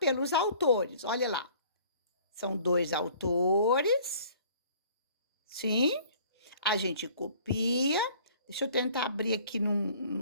autores. Olha lá. São 2 autores. Sim. A gente copia. Deixa eu tentar abrir aqui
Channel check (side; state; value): both; inverted; correlation -0.53